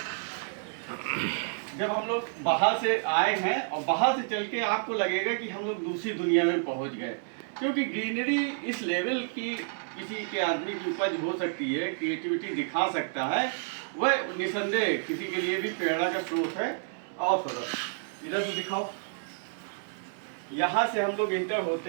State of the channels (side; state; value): left; silent; digital silence